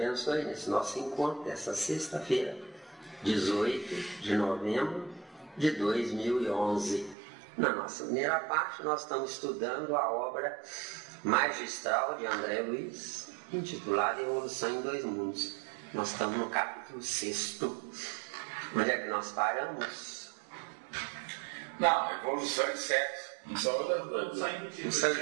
nesse nosso encontro dessa sexta-feira, 18 de novembro de 2011. Na nossa primeira parte, nós estamos estudando a obra magistral de André Luiz, intitulada Evolução em Dois Mundos. Nós estamos no capítulo 6º. Onde é que nós paramos? Não, evolução de sexo. Não só Não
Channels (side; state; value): left; drops out; at 7.2 s